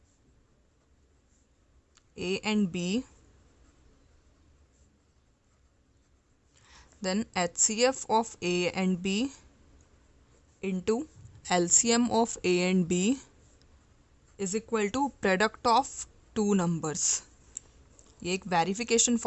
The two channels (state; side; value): identical; both; correlation 1.00